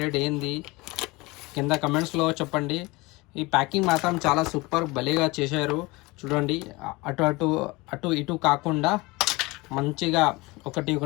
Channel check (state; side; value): quieter; right; 23.2 dB